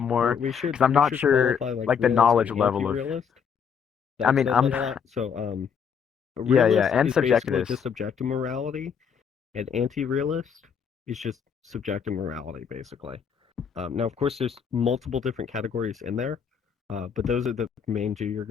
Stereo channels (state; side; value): quieter; right; 7.0 dB